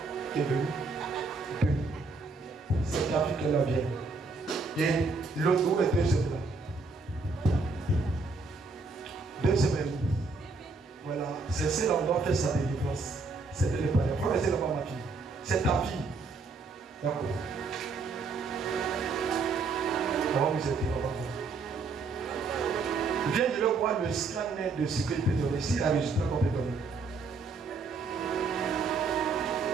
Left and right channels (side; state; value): left; quieter; 4.1 dB